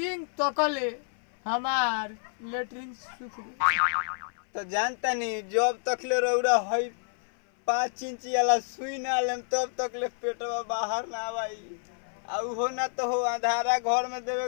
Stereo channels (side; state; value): right; silent; 56 dB below the other